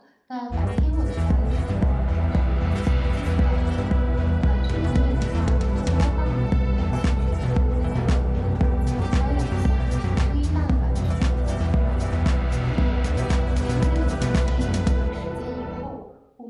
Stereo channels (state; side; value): identical; both; correlation 1.00